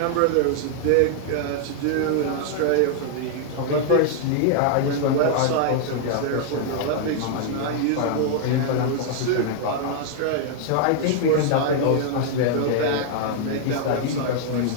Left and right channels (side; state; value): both; different; correlation 0.00